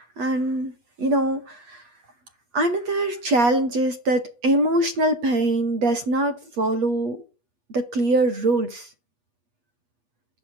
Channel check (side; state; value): left; late; 8.3 ms